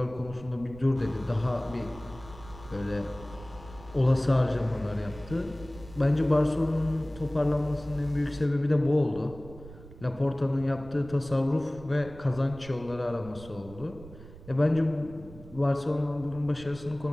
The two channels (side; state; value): right; noise; rumble, 17 dB below the sound